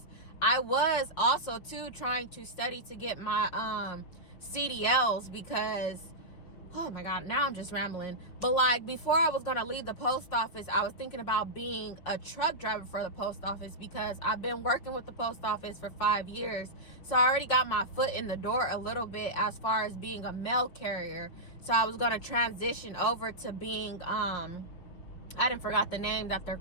I was also too trying to study to get my CDLs, because, oh my God, now I'm just rambling. But like, before I was gonna leave the post office, I was thinking about being a truck driver for the post office, because I've been working with the post office for 5 years. So I already got my foot in the door a little bit as far as being a mail carrier. So I was gonna transition over to being, I didn't forgot the name that they're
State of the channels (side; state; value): right; late; 5.7 ms